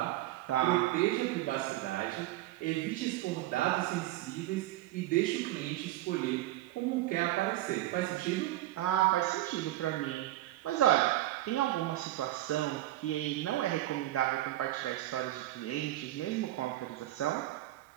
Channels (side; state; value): left; quieter; 15.6 dB